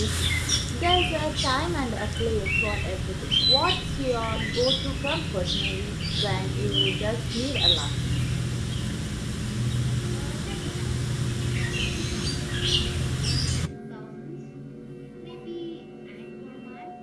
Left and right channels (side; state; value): both; identical; correlation 1.00